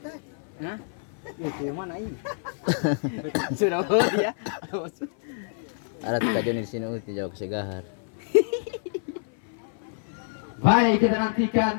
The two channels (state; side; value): silent; right; 57 dB below the other